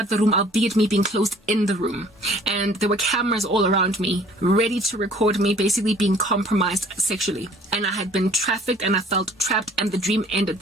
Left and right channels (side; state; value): both; normal; correlation 0.55